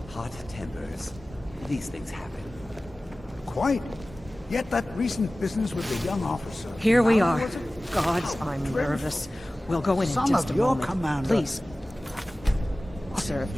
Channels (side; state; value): both; normal; correlation 0.97